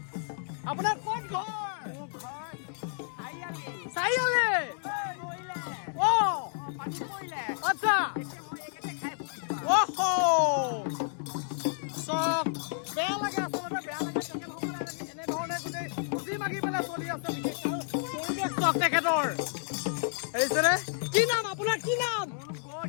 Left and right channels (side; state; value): right; silent; digital silence